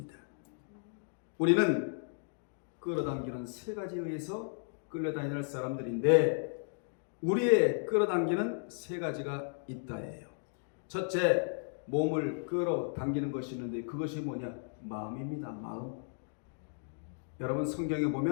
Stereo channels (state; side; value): silent; right; digital silence